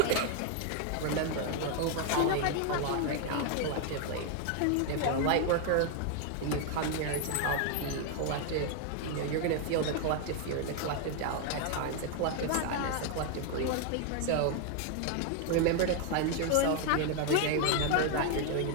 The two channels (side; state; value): both; different; correlation 0.01